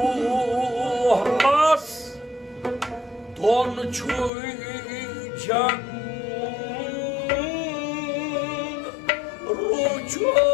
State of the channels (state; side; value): drops out; right; at 4.3 s